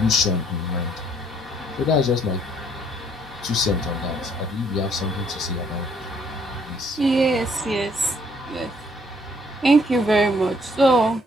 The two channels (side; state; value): both; normal; correlation 0.65